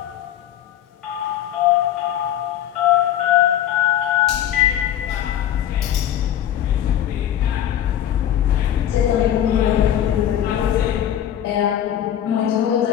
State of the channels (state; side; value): quieter; right; 11.0 dB